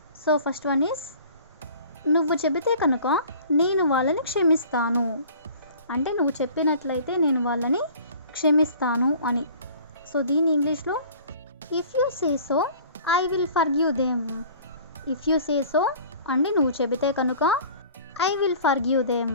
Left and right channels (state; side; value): inverted; both; correlation -0.47